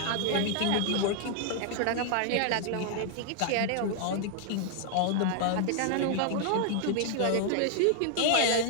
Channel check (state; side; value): different; both; correlation 0.00